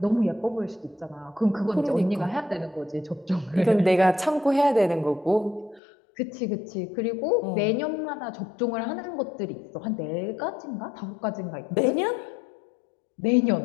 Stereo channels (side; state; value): right; drops out; at 5.8 s